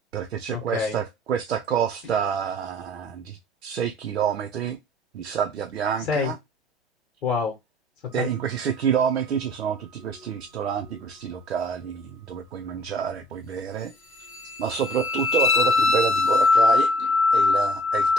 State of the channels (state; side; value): normal; both; correlation 0.53